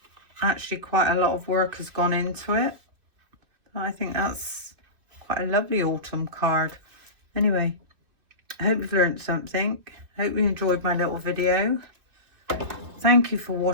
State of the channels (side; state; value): left; late; 2.6 ms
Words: actually quite a lot of work has gone into it. I think that's quite a lovely autumn card. Anyway, I hope you've learned something. Hope you enjoyed my little video. Thank you for